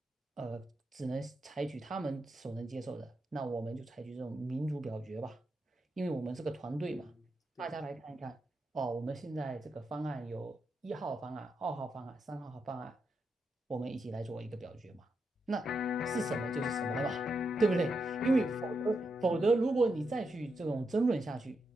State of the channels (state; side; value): normal; both; correlation 0.84